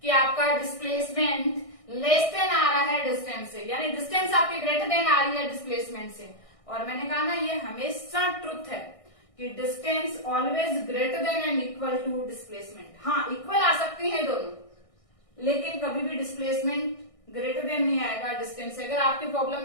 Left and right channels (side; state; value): right; late; 1.6 ms